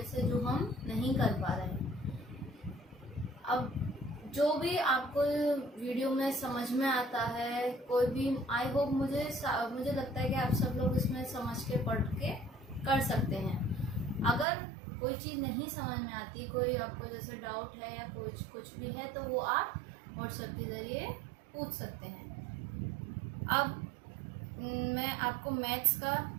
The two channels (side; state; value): left; drops out; at 14.5 s